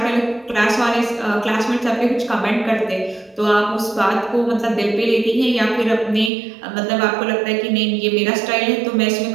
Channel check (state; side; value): drops out; left; at 6.3 s